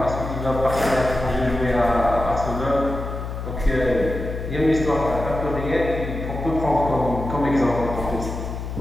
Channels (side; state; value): left; noise; hum, 6 dB below the sound